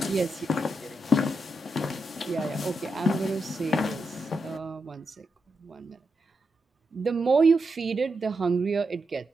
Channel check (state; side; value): normal; both; correlation 0.85